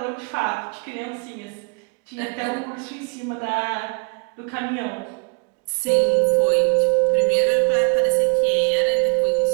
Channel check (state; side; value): quieter; left; 33.6 dB